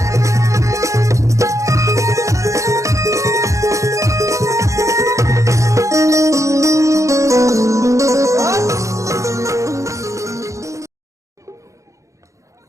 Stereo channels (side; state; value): left; late; 0.15 ms